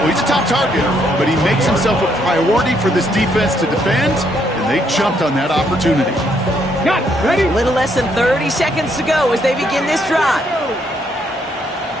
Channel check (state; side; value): normal; both; correlation 0.72